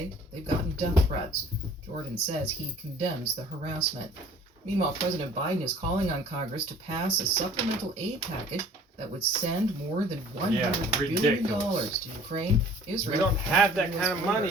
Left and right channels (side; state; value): both; normal; correlation 0.51